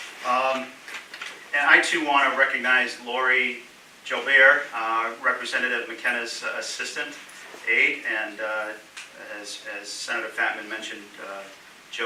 And I too want to recognize Lori Jobert, Representative McKenna's assistant aide, and as Senator Fatman mentioned,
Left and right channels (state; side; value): identical; both; correlation 1.00